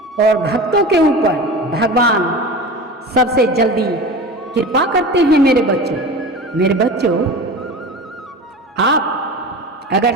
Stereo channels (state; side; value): normal; both; correlation 0.32